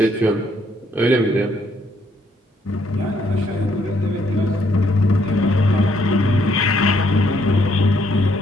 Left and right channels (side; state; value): both; normal; correlation 0.70